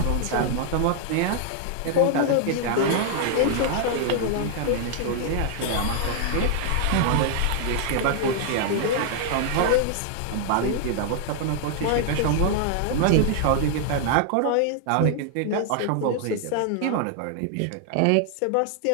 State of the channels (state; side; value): different; both; correlation 0.00